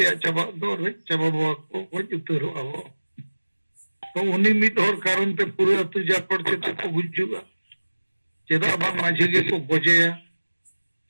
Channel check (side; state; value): both; inverted; correlation -1.00